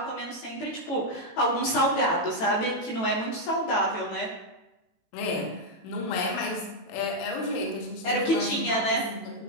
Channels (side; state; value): right; late; 18 ms